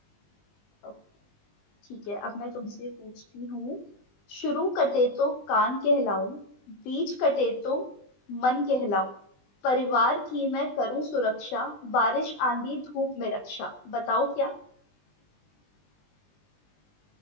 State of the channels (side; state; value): right; late; 20 ms